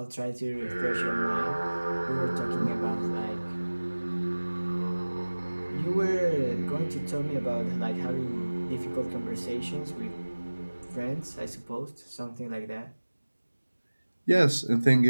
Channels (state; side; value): inverted; both; correlation -1.00